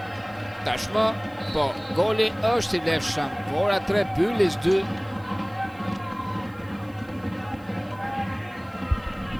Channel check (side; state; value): right; noise; hiss, 29 dB below the sound